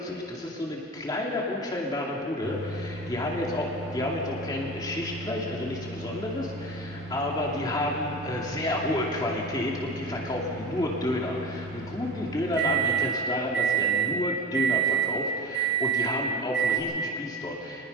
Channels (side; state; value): both; normal; correlation 0.29